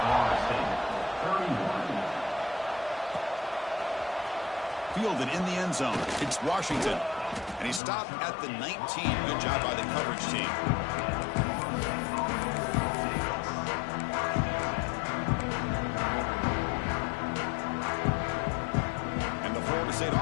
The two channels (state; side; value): drops out; right; at 7.8 s